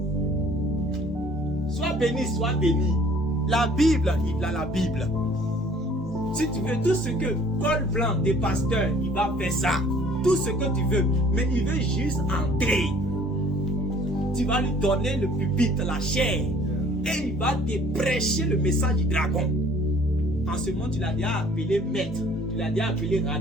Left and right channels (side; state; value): both; normal; correlation 0.54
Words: Sois béni, sois béni. La Bible, il a la Bible. Si tu veux tout ce que col blanc des pasteurs, il va faire ça. Tout ce que tu veux. Mais il veut juste entrer. Tu vas lui donner le pupitre, la chair. Et il va te prêcher le message du dragon. En ce moment, tu l'as déjà appelé maître. Tu l'as déjà appelé